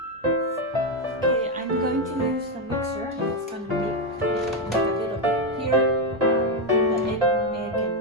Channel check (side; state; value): both; normal; correlation 0.05